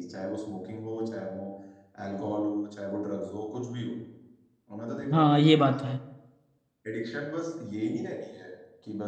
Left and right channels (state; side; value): identical; both; correlation 1.00